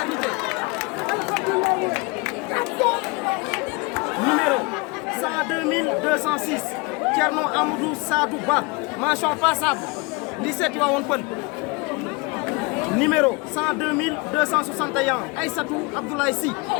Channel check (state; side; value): quieter; right; 27.6 dB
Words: Numéro 102 206, Thierno Amadou Sadou Ba. Mention passable. Lycée Tivaouane Peulh. Numéro 102 261, Aïssatou Abdoulaye Sy.